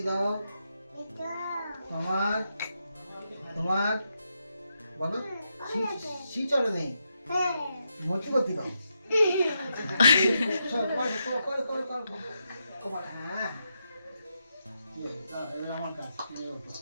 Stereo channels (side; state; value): both; inverted; correlation -0.84